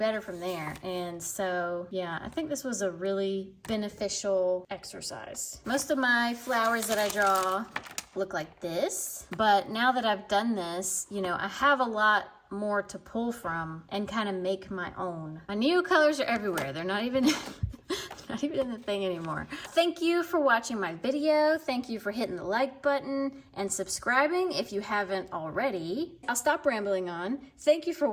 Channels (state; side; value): identical; both; correlation 1.00